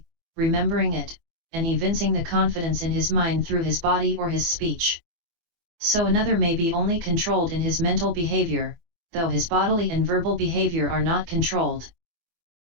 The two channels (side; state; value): left; late; 24 ms